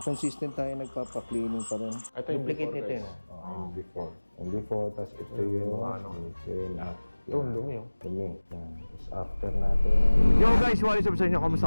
consistent tayo nagpapa-cleaning pa rin. Ito yung Duplicate before, nito guys. yun. Yung before. Yung before, tapos ito yung yung after. Yung dumi yun. Dumi. Yan. Tapos after natin. Yo guys, what is up sa inyo?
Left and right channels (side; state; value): both; inverted; correlation -1.00